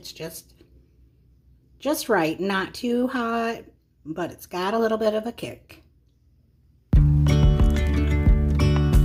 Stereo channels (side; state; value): both; identical; correlation 1.00